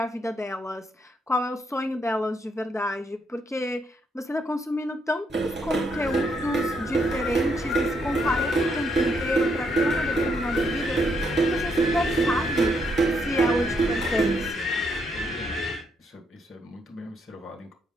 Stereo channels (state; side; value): normal; both; correlation 0.75